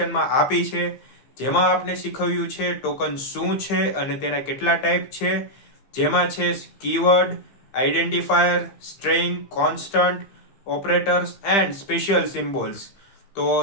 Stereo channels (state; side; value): late; right; 15 ms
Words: આપી છે, જેમાં આપણે શીખવ્યું છે ટોકન શું છે અને તેના કેટલા ટાઈપ છે, જેમાં છે keyword, identifier, string, constant, operators and special symbols. તો